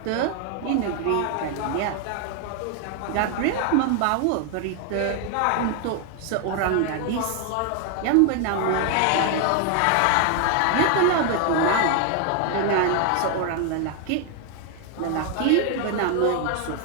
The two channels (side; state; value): both; different; correlation 0.00